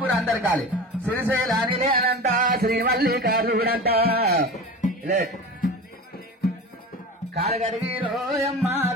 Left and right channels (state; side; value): normal; both; correlation 0.31